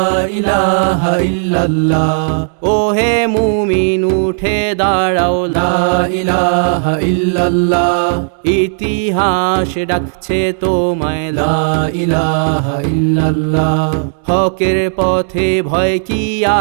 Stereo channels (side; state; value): left; silent; digital silence